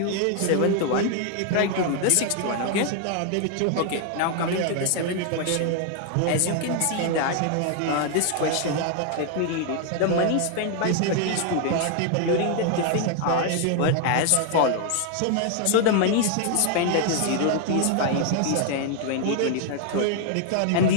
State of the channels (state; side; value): different; both; correlation 0.00